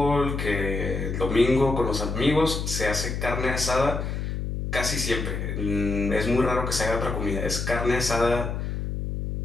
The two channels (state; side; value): noise; left; hum, 3 dB below the sound